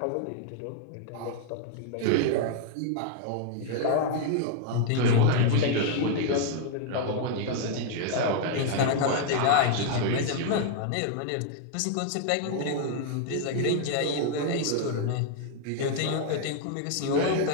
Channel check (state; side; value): different; both; correlation 0.00